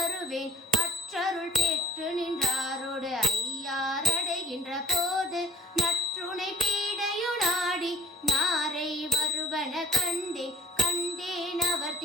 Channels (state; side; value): normal; both; correlation 0.46